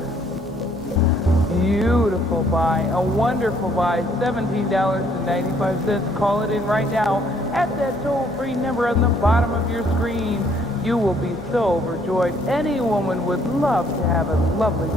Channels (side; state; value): both; normal; correlation 0.65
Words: beautiful buy, a wonderful buy, $17.95. Call it in right now at that toll-free number on the bottom of your screen. You will be so overjoyed. Any woman would love to have a lovely